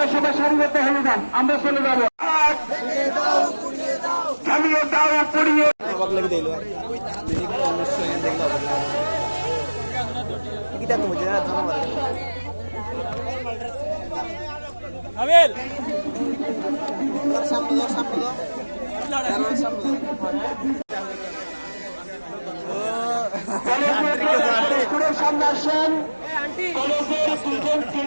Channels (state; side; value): inverted; both; correlation -1.00